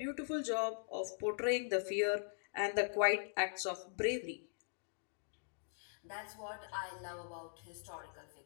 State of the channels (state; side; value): silent; right; digital silence